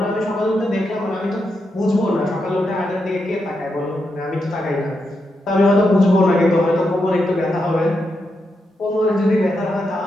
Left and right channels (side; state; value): both; normal; correlation 0.84